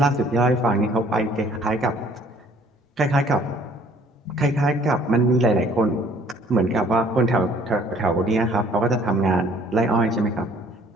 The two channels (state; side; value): normal; both; correlation 0.57